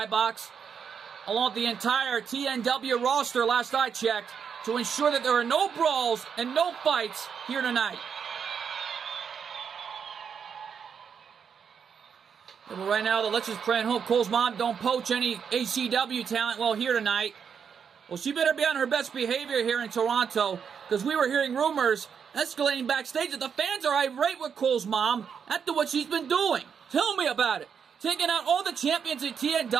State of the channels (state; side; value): quieter; left; 7.0 dB